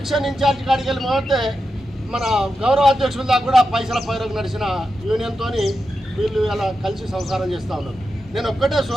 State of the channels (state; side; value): normal; both; correlation 0.89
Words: ఇన్ఛార్జ్ కాడికి వెళ్ళి మొదటే మన గౌరవ అధ్యక్షుల దాకా కూడా పైసల పైరకు నడిచిన యూనియన్తో వీళ్ళు ఇలా కలిసి సంసారం చేస్తూ ఉన్నారు. నేను ఒక్కటే